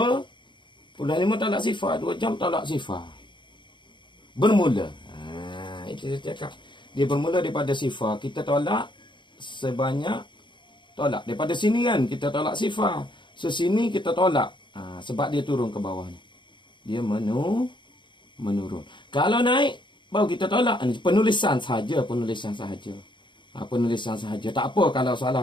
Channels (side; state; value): right; late; 0.23 ms